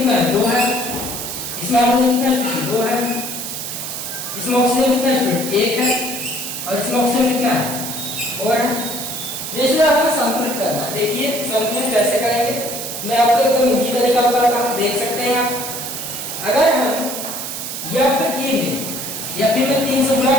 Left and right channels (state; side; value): noise; right; hiss, 6 dB below the sound